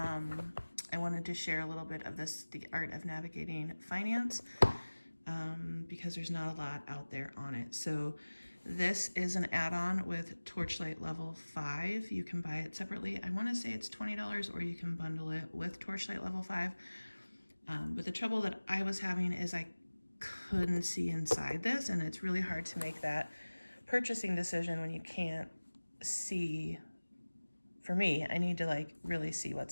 wanted to share a little bit of the art of navigating finance, because there's not a lot out there on it. So this is an add-on with Torchlight level 5. You can buy it separately. I want to say it's $20, or you can bundle it with Torchlight level 5. But the trouble that I was having is I couldn't see inside this, and it's really hard to make that purchasing decision when you can't see. For me, I need to really see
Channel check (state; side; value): inverted; both; correlation -1.00